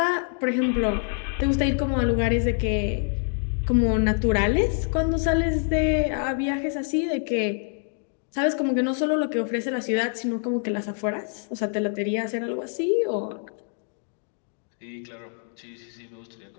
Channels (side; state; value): right; silent; 56 dB below the other